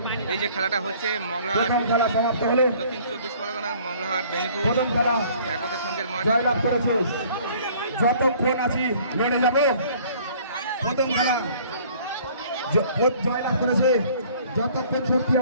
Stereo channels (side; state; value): both; inverted; correlation -0.55